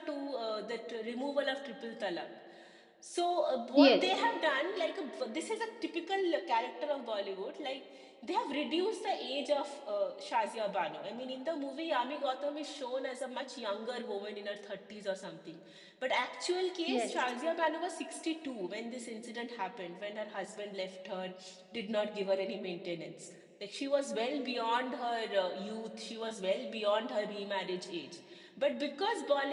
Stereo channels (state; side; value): identical; both; correlation 1.00